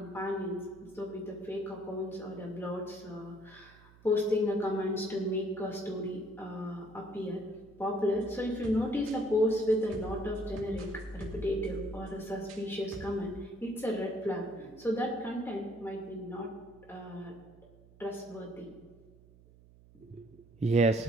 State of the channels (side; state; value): right; noise; hum, 24 dB below the sound